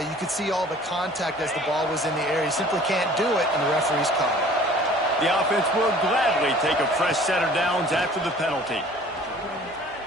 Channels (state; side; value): normal; both; correlation 0.50